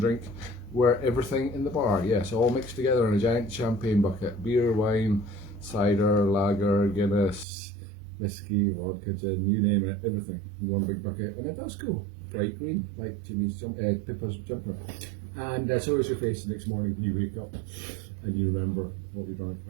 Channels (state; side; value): drops out; left; at 7.5 s